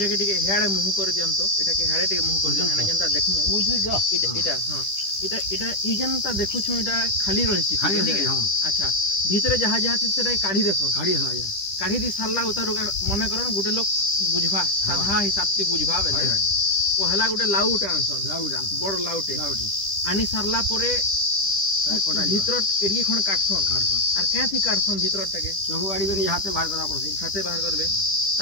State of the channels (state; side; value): late; right; 10 ms